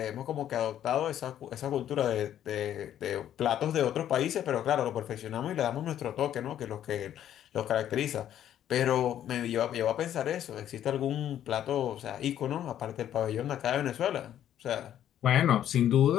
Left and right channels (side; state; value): right; quieter; 10.9 dB